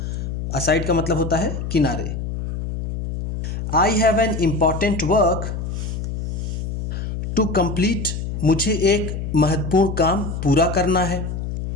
असाइड का मतलब होता है किनारे। I have an important work to complete, मुझे एक महत्वपूर्ण काम पूरा करना है।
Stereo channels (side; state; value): left; noise; hum, 4 dB below the sound